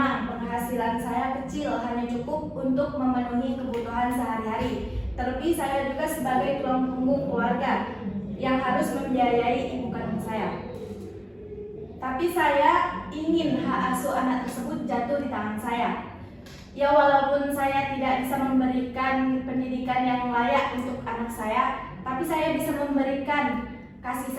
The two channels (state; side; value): identical; both; correlation 1.00